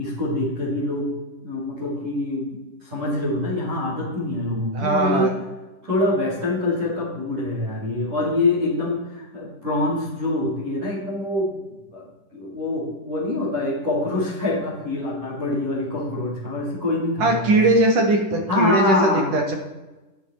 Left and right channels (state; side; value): late; left; 10 ms